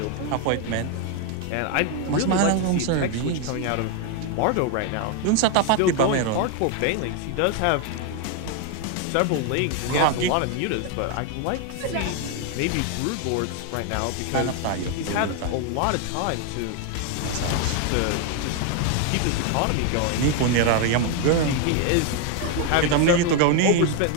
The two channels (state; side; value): different; both; correlation 0.01